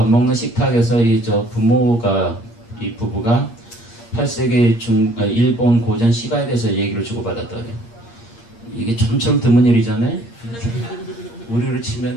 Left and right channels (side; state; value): right; late; 8.6 ms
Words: 먹는 식탁에서 이 부부가 8세기 일본 고전 시가에 대해서 얘기를 주고받았다 그래요. 이게 좀처럼 드문 일이잖아요. 우리를